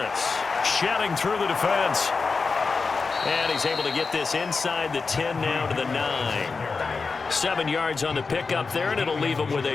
shouting through the defense. And he's able to get this inside the 10 now to the 9. 7 yards on the pickup there, and it'll leave him with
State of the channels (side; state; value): right; quieter; 4.5 dB